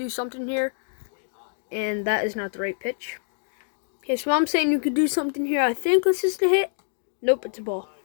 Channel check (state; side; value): silent; right; digital silence